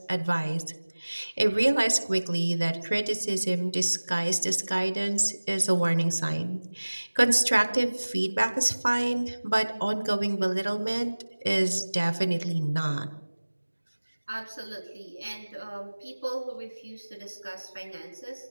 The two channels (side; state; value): both; inverted; correlation -1.00